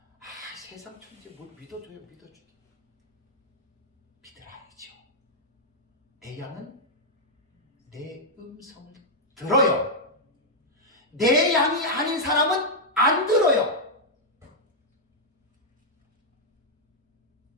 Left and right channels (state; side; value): normal; both; correlation -0.03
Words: 세상 천지 뭘 믿어줘요. 믿으라야죠. 내 양은 내 음성을 들어요. 내 양이 아닌 사람은 안 들어요.